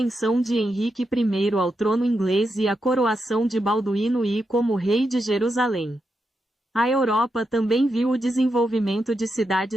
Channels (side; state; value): both; normal; correlation 0.85